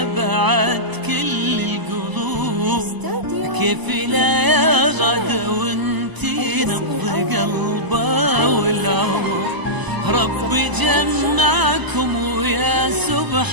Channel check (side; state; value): left; late; 1.0 ms